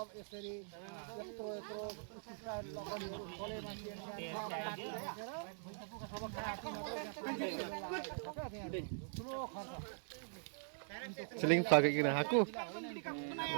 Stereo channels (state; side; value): silent; left; digital silence